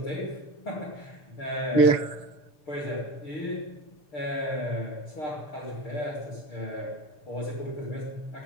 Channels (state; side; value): late; right; 6.8 ms